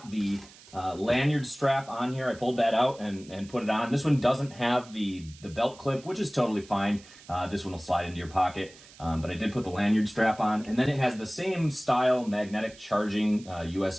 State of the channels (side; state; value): right; noise; hiss, 22 dB below the sound